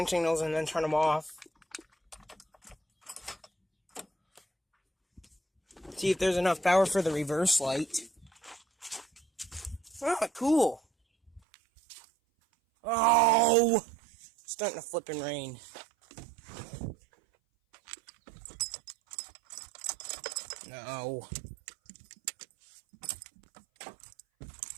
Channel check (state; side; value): drops out; left; at 11.4 s